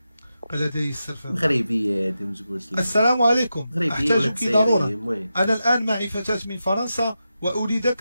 لدي السلفة مغربية هادي ما تقولش لي. السلام عليكم، أحتاجك ضرورة. أنا الآن معي فتاة من فرنسا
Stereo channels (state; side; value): inverted; both; correlation -0.89